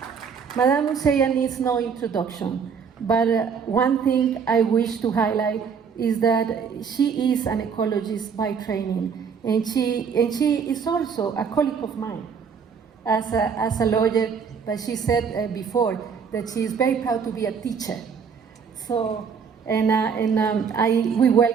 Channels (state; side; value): quieter; left; 6.4 dB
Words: Madame Museya needs no introduction, but one thing I wish to highlight is that she is an ecologist by training, and she is also a colleague of mine as a lawyer, but she said before that she is very proud to be a teacher. So, we